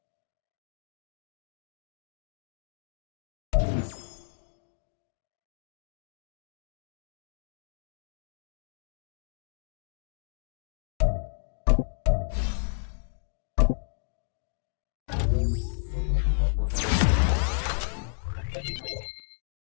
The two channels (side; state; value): right; silent; digital silence